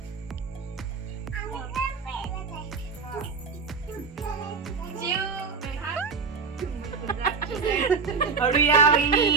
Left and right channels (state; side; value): quieter; left; 5.1 dB